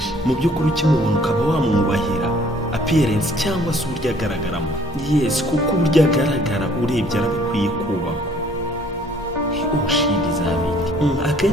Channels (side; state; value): both; normal; correlation 0.59